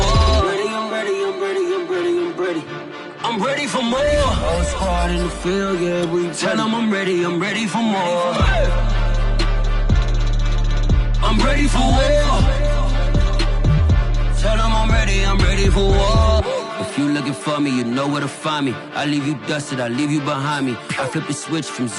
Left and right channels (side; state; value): both; identical; correlation 1.00